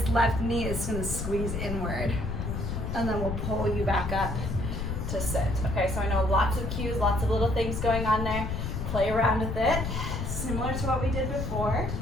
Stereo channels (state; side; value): noise; left; rumble, 3 dB below the sound